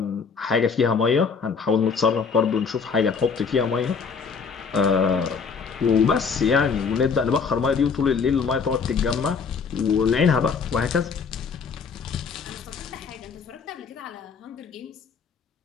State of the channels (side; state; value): right; quieter; 5.6 dB